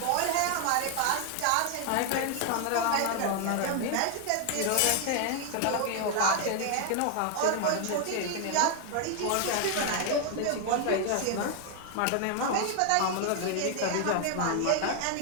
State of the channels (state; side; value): different; both; correlation 0.00